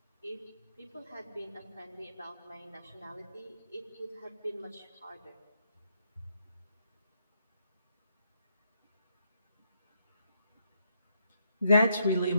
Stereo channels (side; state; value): both; inverted; correlation -0.77